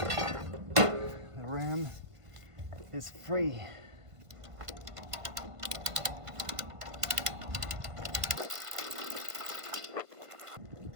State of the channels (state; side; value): late; left; 1.5 ms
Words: the ram is free.